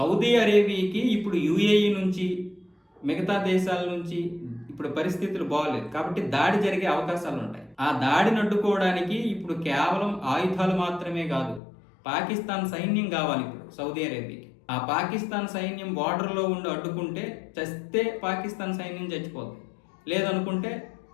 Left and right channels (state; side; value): drops out; right; at 11.6 s